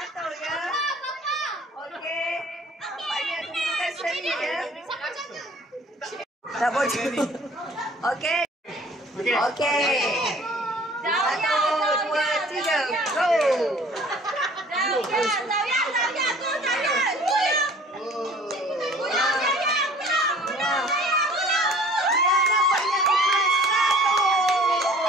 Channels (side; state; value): both; normal; correlation 0.51